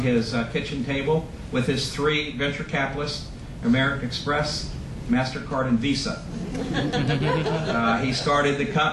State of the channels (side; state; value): both; identical; correlation 1.00